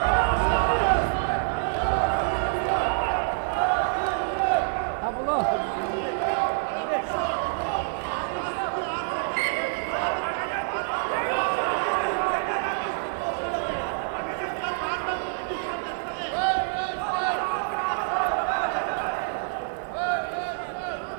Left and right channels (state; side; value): silent; left; digital silence